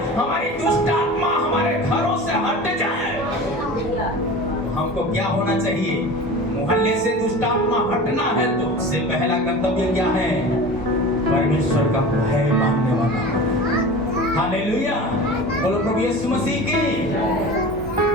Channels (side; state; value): both; normal; correlation 0.35